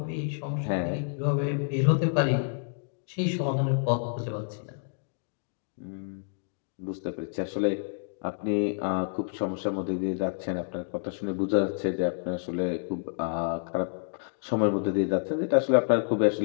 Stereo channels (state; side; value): silent; right; digital silence